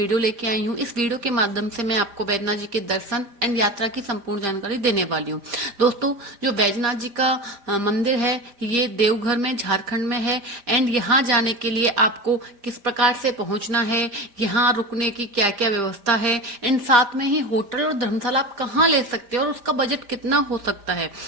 लेके आई हूँ। इस वीडियो के माध्यम से मैं आपको बैजनाथ जी के दर्शन एंड यात्रा की संपूर्ण जानकारी देने वाली हूँ। दोस्तों, जो बैजनाथ जी का मंदिर है ये देवघर में झारखंड में है। एंड यहाँ जाने के लिए आपको किस प्रकार से पहुंचना है, यहाँ रुकने की क्या क्या व्यवस्था है, एंड साथ में ही होटल और धर्मशाला आप कहाँ ले सकते हैं और उसका बजट कितना हो सकता है,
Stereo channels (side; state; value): left; late; 5.0 ms